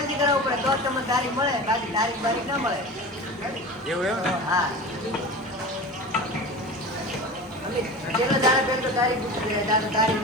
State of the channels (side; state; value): both; normal; correlation 0.32